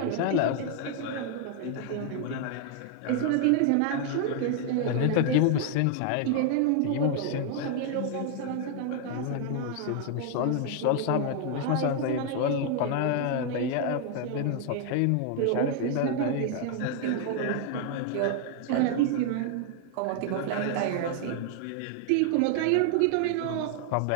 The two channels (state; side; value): different; both; correlation 0.00